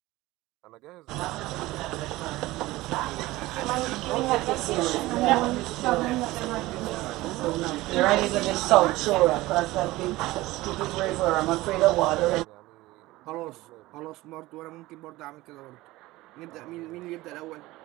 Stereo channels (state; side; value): quieter; left; 18.7 dB